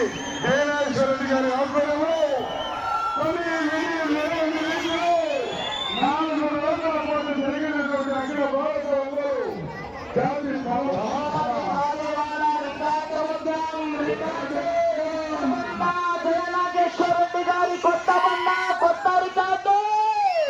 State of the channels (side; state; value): both; identical; correlation 1.00